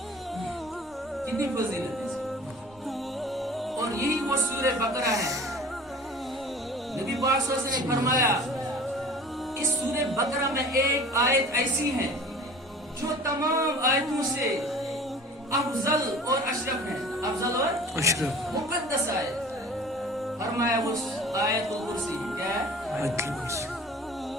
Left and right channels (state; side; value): normal; both; correlation 0.43